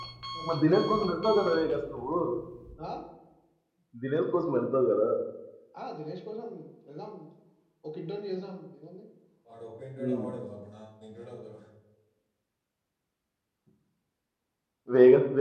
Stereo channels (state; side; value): identical; both; correlation 1.00